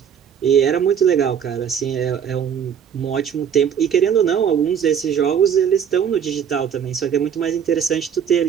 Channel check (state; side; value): quieter; left; 8.1 dB